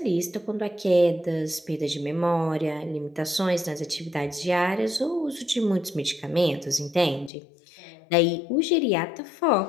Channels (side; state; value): right; drops out; at 7.3 s